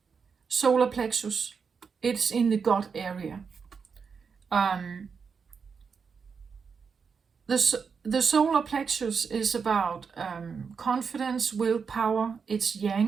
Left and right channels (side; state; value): left; quieter; 5.8 dB